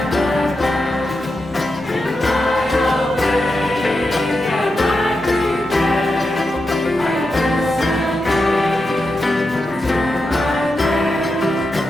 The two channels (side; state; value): both; normal; correlation 0.88